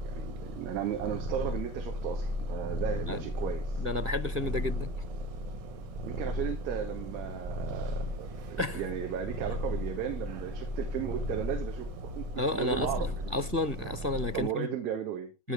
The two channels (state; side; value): late; left; 1.6 ms